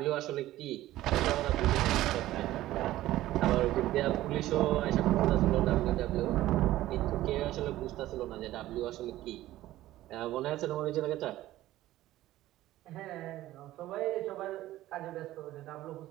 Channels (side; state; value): left; quieter; 15.2 dB